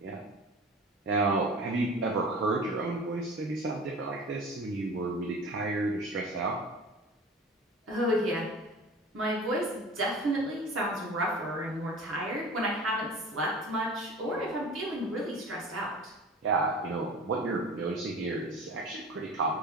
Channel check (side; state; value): both; normal; correlation 0.38